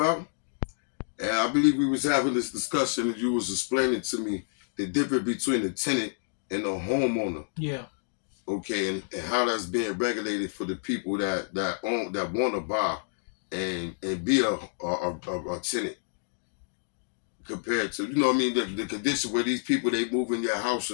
And I believe we was having this discussion and you was explaining to me the difference between the tenant and the homeowner. Yeah. Okay, and how that's being regulated for the people that want to buy and be a tenant compared to, you know what I mean, the condition where these people, they move in your house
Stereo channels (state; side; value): silent; right; digital silence